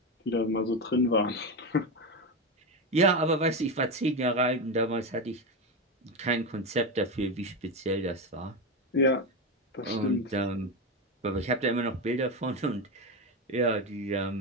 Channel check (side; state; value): both; normal; correlation 0.15